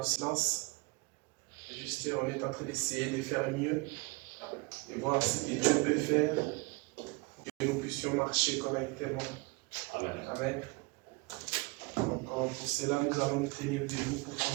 silence. Juste, on est en train d'essayer de faire mieux et voir ce que Dieu peut faire, que nous puissions marcher correctement. Amen. Amen. Donc, pour cela, nous allons nous tenir debout pour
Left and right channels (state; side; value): quieter; left; 27.2 dB